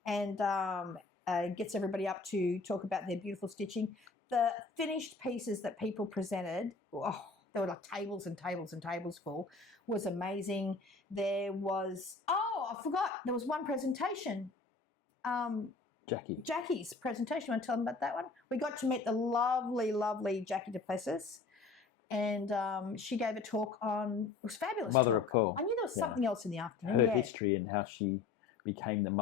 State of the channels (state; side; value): quieter; right; 4.2 dB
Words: and gets everybody up to talk about their beautiful stitching. The finished pieces that people presented, there were like tables and tables and tables full, was amazing. There was, I forgot, there was one presentation. Jackie's presentation. You want to tell them about that one? We got to meet the lovely, lovely Jackie Duplessis, and she gave a talk on, it was fabulous Mother talk. Of Pearl. I knew there was something else in the afternoon. Her history and how she became the